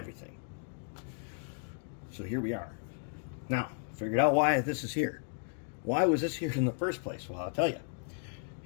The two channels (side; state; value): right; silent; 55 dB below the other